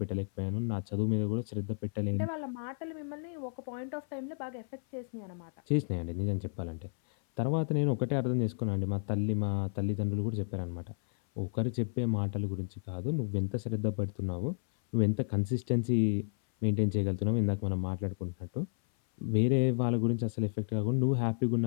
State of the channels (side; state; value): right; silent; 56 dB below the other